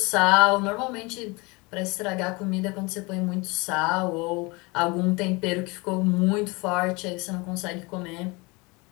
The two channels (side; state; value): right; quieter; 26.1 dB